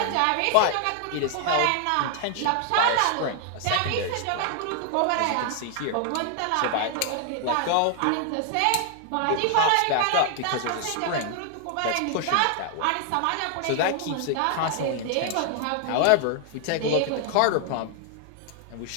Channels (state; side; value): different; both; correlation 0.00